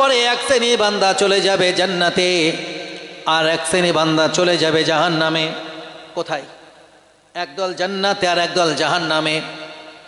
পরে এক শ্রেণী বান্দা চলে যাবে জান্নাতে, আর এক শ্রেণী বান্দা চলে যাবে জাহান্নামে। কোথায়? একদল জান্নাতে আর একদল জাহান্নামে।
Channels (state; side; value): identical; both; correlation 1.00